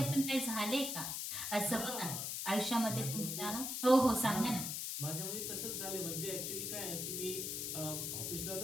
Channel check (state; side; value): noise; left; hiss, 3 dB below the sound